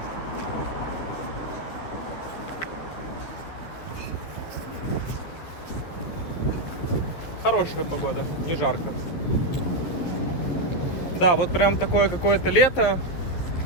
Хорошая погода, не жарко. Да, вот прям такое какое-то лето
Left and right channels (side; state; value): right; late; 12 ms